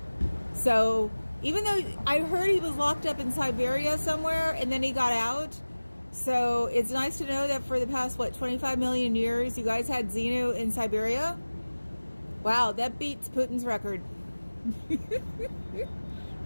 So, even though I heard he was locked up in Siberia somewhere and then he got out. So it's nice to know that for the past, 25 million years, you guys had Xenu in Siberia? Wow, that beats Putin's record.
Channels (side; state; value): both; inverted; correlation -1.00